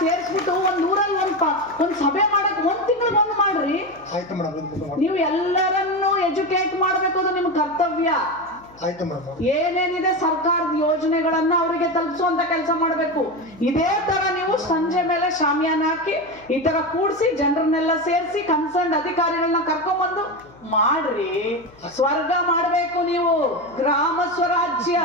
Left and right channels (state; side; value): noise; left; hum, 26 dB below the sound